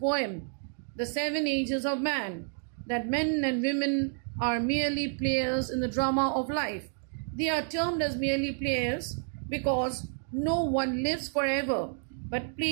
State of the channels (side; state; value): left; silent; 55 dB below the other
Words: The Seven Ages of Man, that men and women are merely players in the drama of life. They are termed as merely players because no one lives forever, but